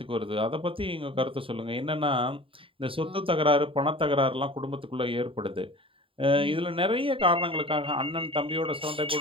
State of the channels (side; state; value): left; late; 0.26 ms